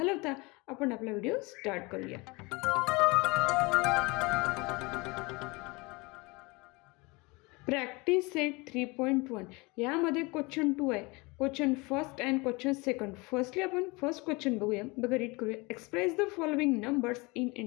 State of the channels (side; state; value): right; quieter; 25.9 dB